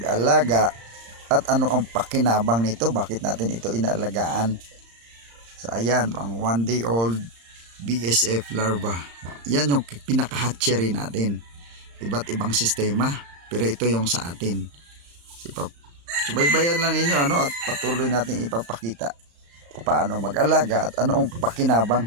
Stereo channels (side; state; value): left; late; 35 ms